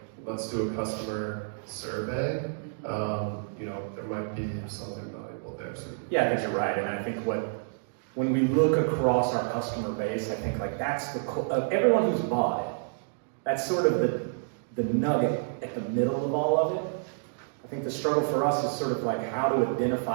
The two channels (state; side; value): silent; left; digital silence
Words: let's do a customer survey, there might be something valuable there. So. Yeah, I think you're right, and I think when we look across our customer base, I think like that's everyone who's bought it, that's sort of the nugget at the middle of all of it. I think the struggle for us is sort of like how to